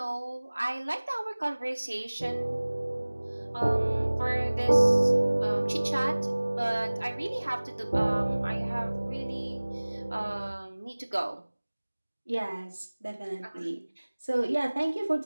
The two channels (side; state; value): both; inverted; correlation -1.00